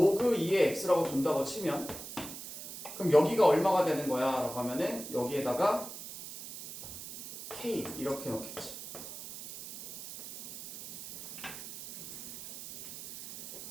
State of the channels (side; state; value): right; noise; hiss, 11 dB below the sound